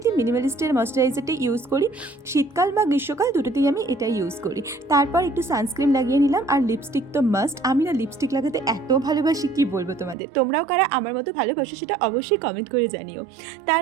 মিনিমালিস্টের ময়শ্চারাইজারটা ইউজ করি, শীতকাল বা গ্রীষ্মকাল দুটোতেই আমি এটা ইউজ করি। তারপর একটু সানস্ক্রিন লাগিয়ে নিলাম, আর লিপস্টিক তো মাস্ট। আমি না লিপস্টিক লাগাতে এত ভালোবাসি, কি বলবো তোমাদের। তোমরাও কারা আমার মতো ভালোবাসো সেটা অবশ্যই কমেন্ট করে জানিও।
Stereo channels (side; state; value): left; drops out; at 10.2 s